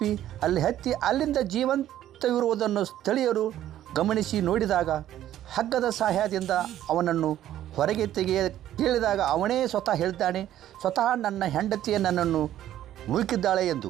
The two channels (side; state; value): left; quieter; 12.3 dB